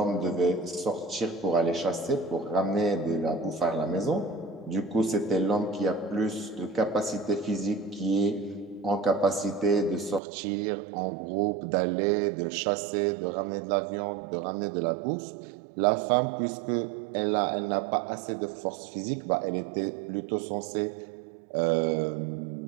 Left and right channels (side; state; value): left; drops out; at 10.2 s